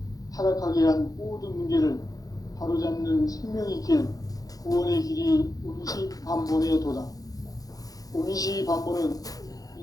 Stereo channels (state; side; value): late; right; 0.18 ms